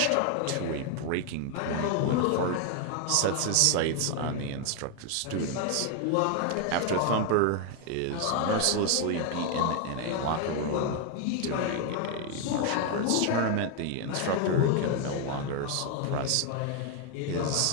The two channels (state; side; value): different; both; correlation 0.01